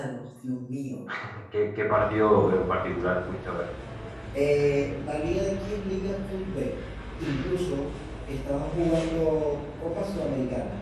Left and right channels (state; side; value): identical; both; correlation 1.00